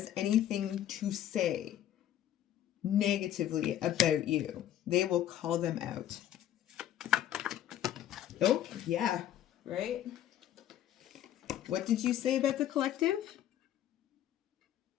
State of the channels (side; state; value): right; quieter; 11.6 dB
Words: anything to say negatively about you. They will call them out. Oh, yeah, right? What did you say about the collective?